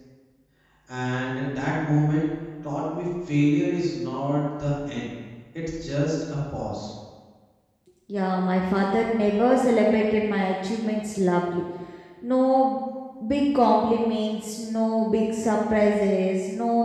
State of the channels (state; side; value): identical; both; correlation 1.00